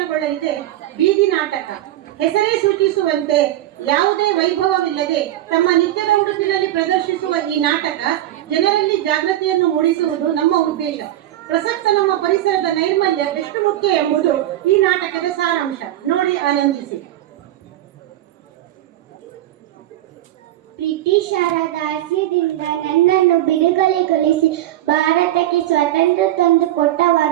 ಬೀದಿ ನಾಟಕ. ಹೆಸರೇ ಸೂಚಿಸುವಂತೆ ಯಾವುದೇ ವೈಭವವಿಲ್ಲದೆ ತಮ್ಮ ನಿತ್ಯದ ಉಡುಪಿನಲ್ಲಿ ಪ್ರದರ್ಶಿಸುವ ಈ ನಾಟಕ ಜನರಲ್ಲಿ ಜಾಗೃತಿಯನ್ನು ಮೂಡಿಸುವುದು ನಮ್ಮ ಉದ್ದೇಶ. ಪ್ರಸಕ್ತ ನಮ್ಮ ಪರಿಸರದ ನೈರ್ಮಲ್ಯ ಎಷ್ಟು ಮುಖ್ಯ ಎಂಬುದು ಈ ನಾಟಕದ ಸಾರಾಂಶ. ನೋಡಿ, ಆನಂದಿಸಿ. ಬ್ರಿಟಿಷರ ದಾಸ್ಯದಿಂದ ನನ್ನನ್ನು ಬಿಡುಗಡೆಗೊಳಿಸಿ ಭಾರತಕ್ಕೆ ಸ್ವಾತಂತ್ರ್ಯ ತಂದು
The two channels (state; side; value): quieter; left; 14.0 dB